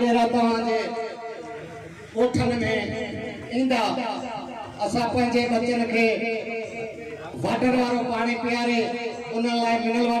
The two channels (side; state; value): both; identical; correlation 1.00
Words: तव्हांजे ॻोठनि में ईंदा। असां पंहिंजे बचनि खे वाटर वारो पानी पियारे उन लाइ मिनरल